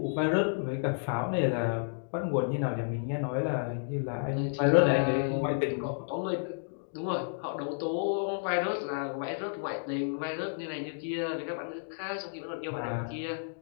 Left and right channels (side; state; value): right; silent; digital silence